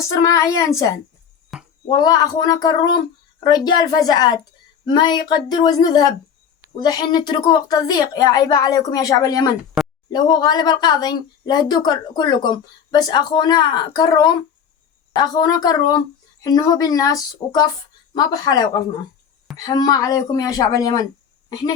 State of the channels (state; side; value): quieter; right; 7.7 dB